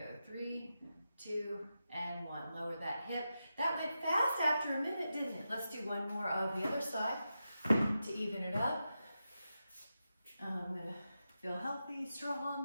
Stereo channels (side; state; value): both; inverted; correlation -0.89